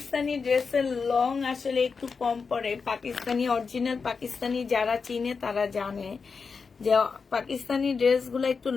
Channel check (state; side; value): quieter; right; 5.1 dB